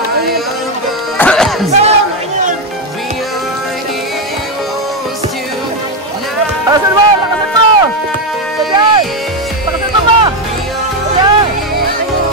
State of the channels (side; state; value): both; normal; correlation 0.07